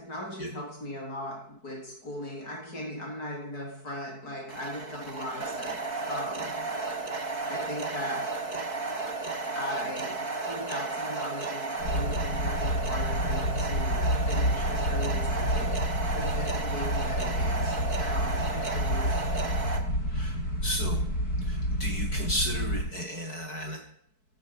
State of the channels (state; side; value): late; right; 4.6 ms